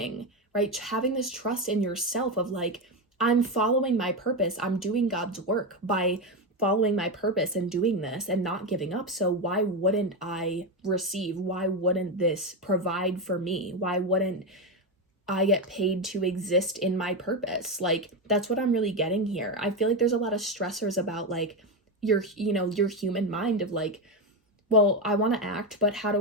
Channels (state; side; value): normal; both; correlation 0.12